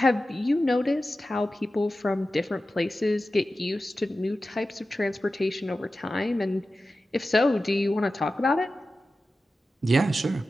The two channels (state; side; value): normal; both; correlation 0.94